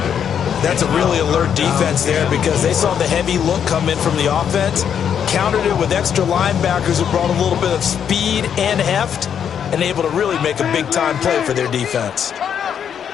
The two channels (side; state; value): right; quieter; 8.3 dB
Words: That's a really alert defense there because they saw the heavy look come in from the offense, countered it with extra linebackers who brought a little bit of speed and heft, and able to really make a big-time play for their defense.